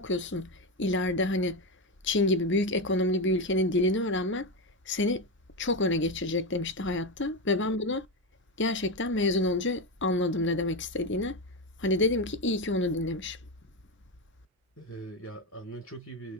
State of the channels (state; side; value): normal; both; correlation 0.13